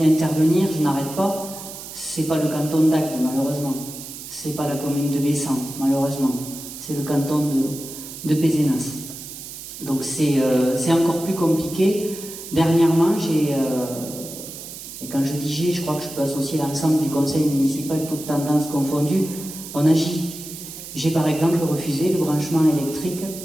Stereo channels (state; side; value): noise; right; hiss, 12 dB below the sound